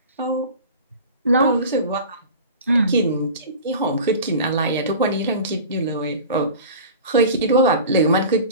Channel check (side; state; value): both; inverted; correlation -0.37